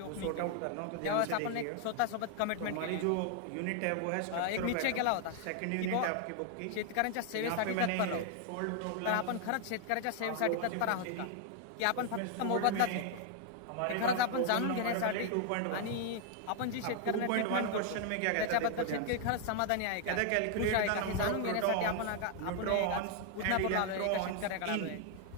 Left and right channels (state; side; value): different; both; correlation 0.00